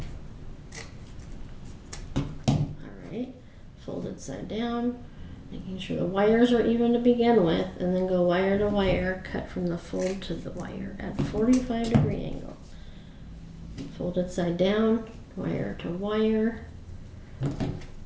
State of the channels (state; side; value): identical; both; correlation 1.00